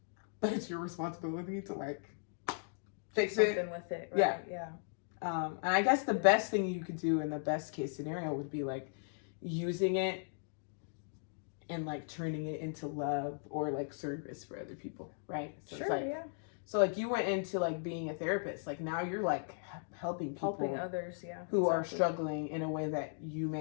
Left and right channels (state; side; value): silent; right; digital silence